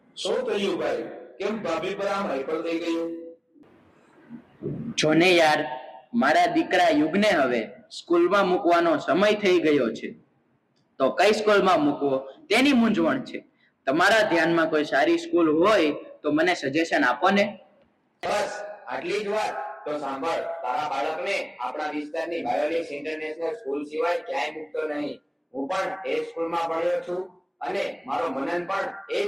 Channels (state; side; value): identical; both; correlation 1.00